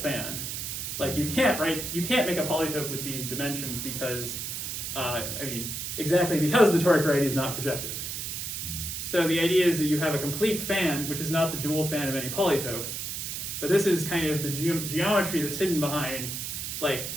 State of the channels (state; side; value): noise; right; hiss, 5 dB below the sound